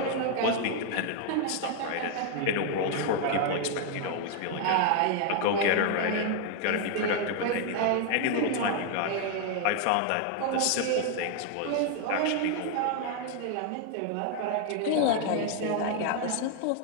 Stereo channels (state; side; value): different; both; correlation 0.00